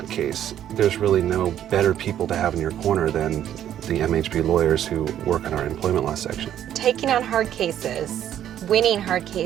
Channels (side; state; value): left; quieter; 10.8 dB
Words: case, there's really no better people to have in your corner than the MHB lawyers who work in our employment law section. Taking on hard cases, winning hard